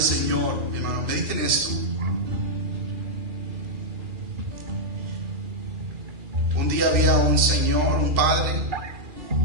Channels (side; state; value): left; late; 2.4 ms